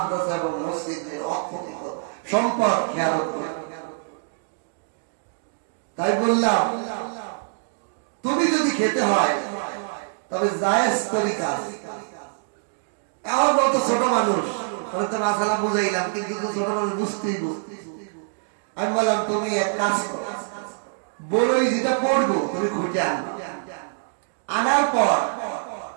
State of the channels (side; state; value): left; silent; digital silence